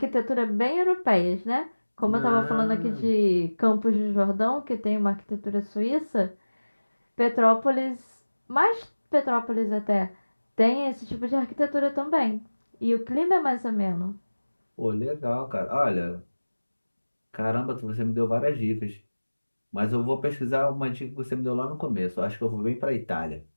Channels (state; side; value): inverted; both; correlation -1.00